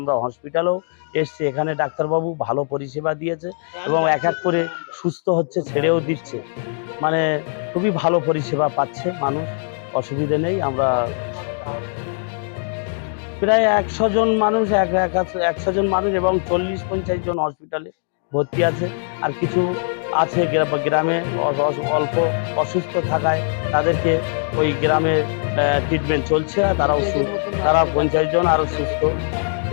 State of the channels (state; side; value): silent; right; 65 dB below the other